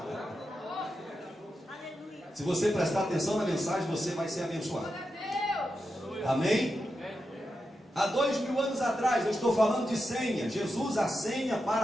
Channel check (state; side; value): normal; both; correlation 0.88